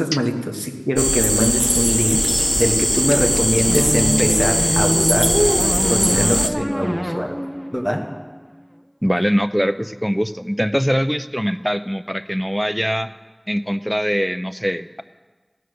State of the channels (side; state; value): both; identical; correlation 1.00